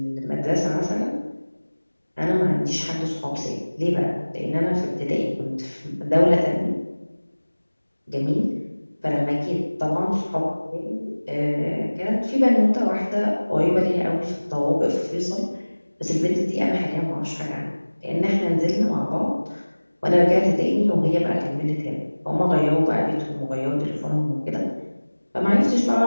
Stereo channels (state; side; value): inverted; both; correlation -1.00